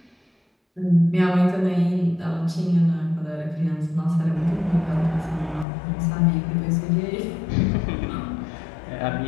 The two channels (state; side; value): drops out; right; at 5.7 s